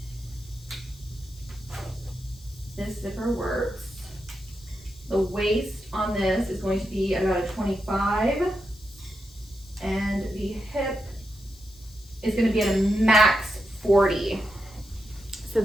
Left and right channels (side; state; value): left; noise; hiss, 24 dB below the sound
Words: This zipper works. The waist on this is going to be about a 25. And the hip is going to be at a max 40. So